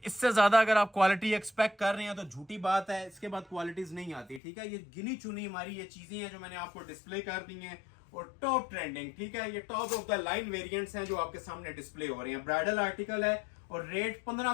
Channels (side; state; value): right; drops out; at 4.4 s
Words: इससे ज़्यादा अगर आप क्वालिटी एक्सपेक्ट कर रहे हैं तो झूठी बात है, इसके बाद क्वालिटीज़ नहीं आती, ठीक है। ये गिनी चुनी हमारी ये चीज़ें हैं जो मैंने आपको डिस्प्ले कर दी हैं, और टॉप ट्रेंडिंग, ठीक है। ये top of the line variants हैं जो आपके सामने डिस्प्ले हो रहे हैं। ब्राइडल आर्टिकल है और रेट 15